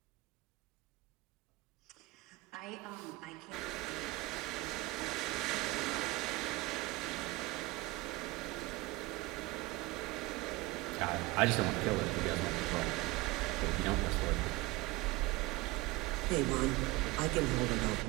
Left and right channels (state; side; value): quieter; left; 21.4 dB